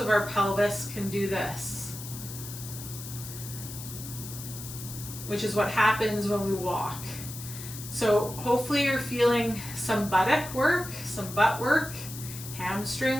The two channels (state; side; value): noise; left; hiss, 11 dB below the sound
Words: our pelvis can do this, which is what happens when we walk. So hopefully you're feeling some buttock work, some butt work,